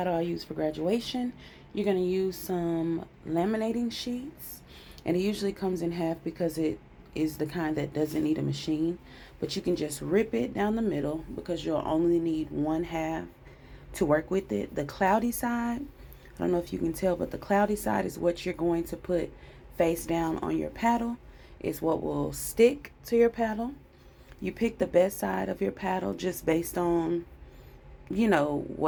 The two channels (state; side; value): identical; both; correlation 1.00